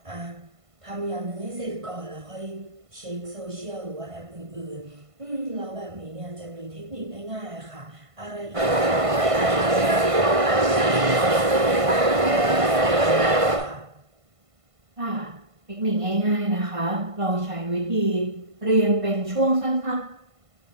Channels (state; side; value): late; left; 1.5 ms